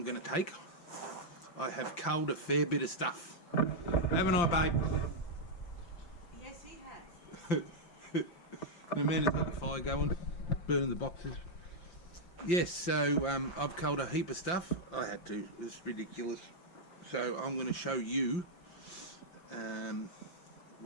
going to take. I have culled a fair bit of stuff. Haven't I, babe? Yes, he has. The man has got the fire going, burning the boxes. Yes, so I've culled a heap of stuff. I had to. It's ridiculous. So I'm going to show you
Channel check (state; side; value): late; right; 5.7 ms